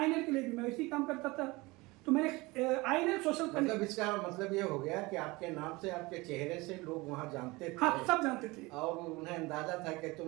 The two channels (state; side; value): quieter; left; 23.0 dB